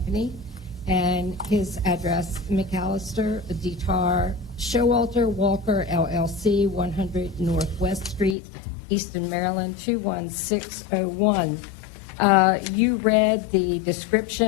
and his address, McAllister, Detar, Showalter, Walker, LLC, 100 Northwest Street, Easton, Maryland, 21601. You read the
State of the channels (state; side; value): drops out; right; at 8.3 s